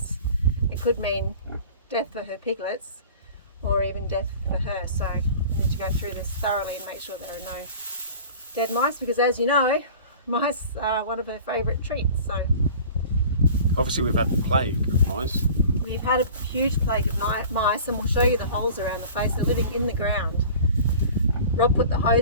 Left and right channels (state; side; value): inverted; both; correlation -0.42